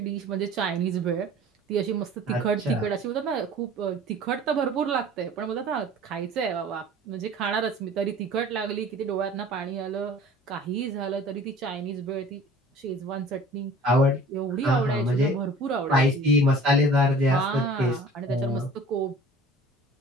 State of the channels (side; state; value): both; normal; correlation 0.46